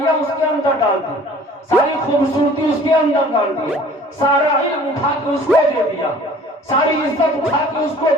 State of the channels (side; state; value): both; normal; correlation 0.49